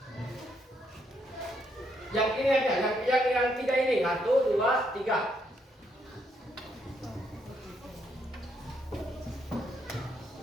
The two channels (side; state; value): both; normal; correlation 0.75